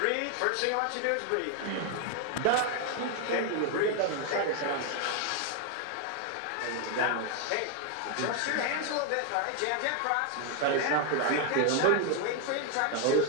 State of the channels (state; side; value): different; both; correlation 0.01